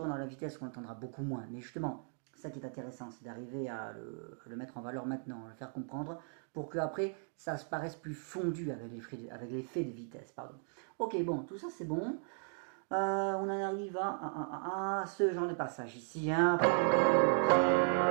dans la vitesse on l'entendra beaucoup moins, mais justement, ça qui est intéressant, c'est d'arriver à le mettre en valeur maintenant, à le faire comprendre, pour que après ça se paraisse plus fondu avec l'effet de vitesse. Pardon. Ok, bon, tout ça c'est bon. On en arrive à ce genre de passage ici. Hein.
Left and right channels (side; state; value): left; silent; 53 dB below the other